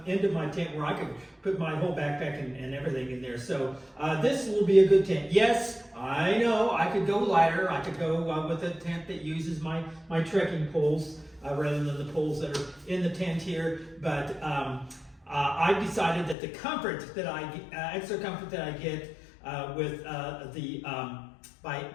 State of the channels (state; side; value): drops out; right; at 16.4 s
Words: end of my tent where I could put my whole backpack and everything in there. So this will be a good tent. Yes, I know I could go lighter. I could go with a tent that uses my trekking poles rather than the poles that are in the tent here. But I've decided that the comfort that extra comfort that I get with